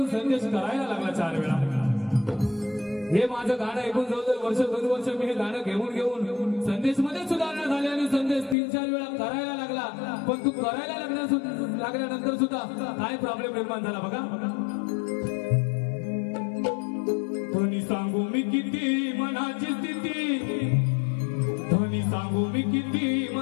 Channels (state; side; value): drops out; right; at 8.6 s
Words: संदेश करायला लागला 4 वेळा हे माझं गाणं ऐकून जवळजवळ वर्ष 2 वर्ष मी हे गाणं घेऊन लागल्यानंतर सुद्धा काय प्रॉब्लेम निर्माण झाला बघा. ध्वनी सांगू मी किती मनाची स्थिती, ध्वनी सांगू मी किती